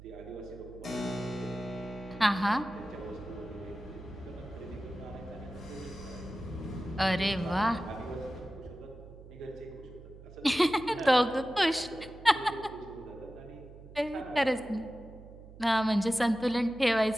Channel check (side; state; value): right; noise; hum, 17 dB below the sound